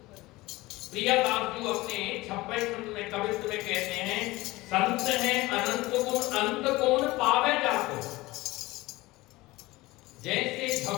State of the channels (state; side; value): quieter; right; 20.1 dB